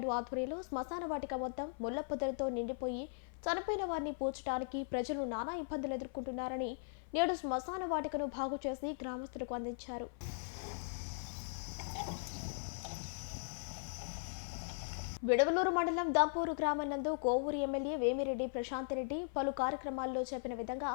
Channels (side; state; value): right; silent; 52 dB below the other